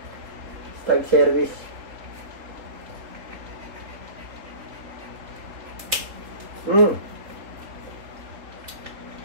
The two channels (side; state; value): left; late; 3.6 ms